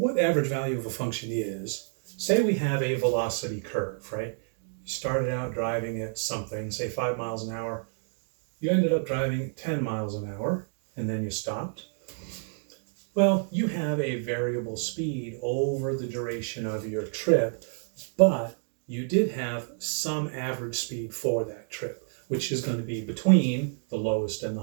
average value of a function is, say we have a velocity curve, right? You started out driving at something, say 5 miles an hour. You ended up driving 10 miles an hour, and then you stopped. Well, you have a variable speed over the duration of your trip, but you did have some average speed for that trip, which is going to be between the lowest and the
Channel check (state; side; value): silent; left; 59 dB below the other